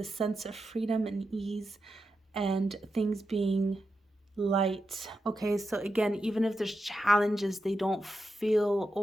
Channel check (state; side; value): normal; both; correlation 0.88